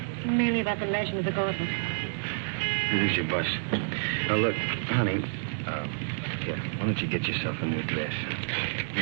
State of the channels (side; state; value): left; silent; digital silence